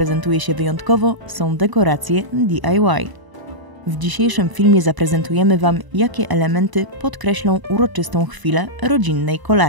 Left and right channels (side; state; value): left; late; 1.0 ms